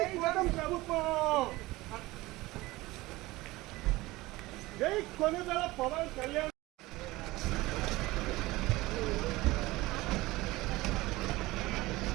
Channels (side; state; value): left; quieter; 19.8 dB